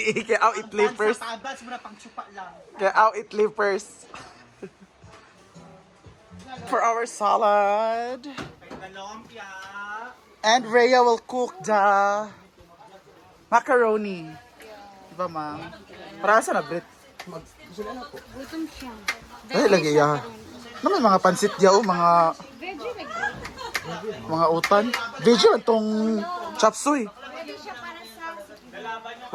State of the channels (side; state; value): both; identical; correlation 1.00